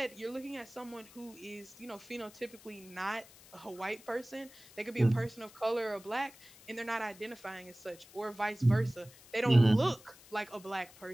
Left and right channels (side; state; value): left; noise; hiss, 22 dB below the sound